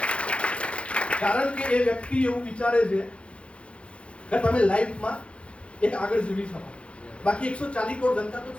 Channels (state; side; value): late; right; 0.060 ms